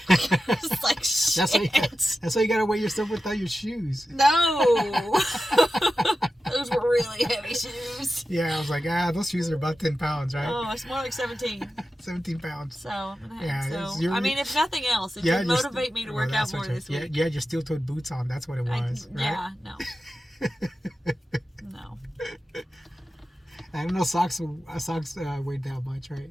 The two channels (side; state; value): both; normal; correlation 0.92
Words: I was like, shit. That's why you got to weigh yourself without your shoes. No. Those were really heavy shoes. Yeah, I was like, those shoes are about 10 pounds, right? Oh, it's more like 17. 17 pounds. So, I'm gonna Yeah, have, it's- so you're- I mean, if nothing else, it Yeah, should you're motivate me to work out that's more what this you- week. Yeah, your steel-toed boots on. That's what it was, right? Yeah, no. No. I don't know socks weighed that much,